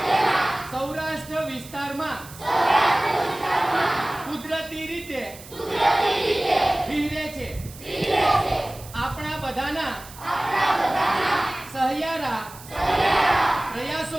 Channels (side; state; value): right; noise; hiss, 18 dB below the sound